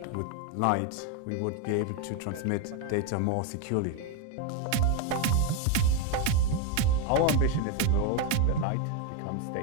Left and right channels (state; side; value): different; both; correlation 0.02